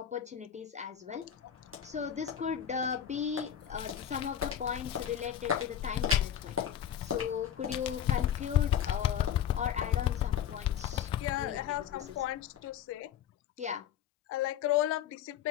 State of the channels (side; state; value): right; quieter; 9.7 dB